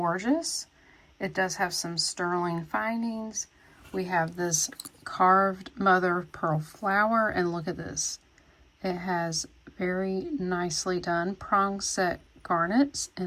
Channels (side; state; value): both; identical; correlation 1.00